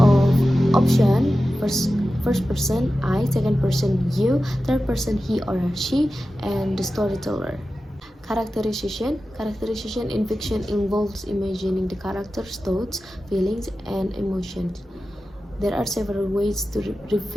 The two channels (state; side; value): normal; both; correlation 0.93